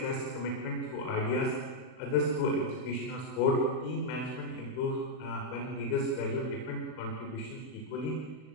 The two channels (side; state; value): right; late; 39 ms